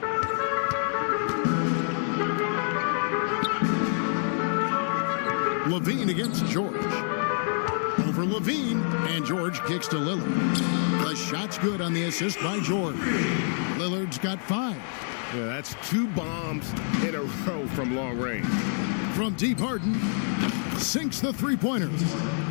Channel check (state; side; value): silent; right; 60 dB below the other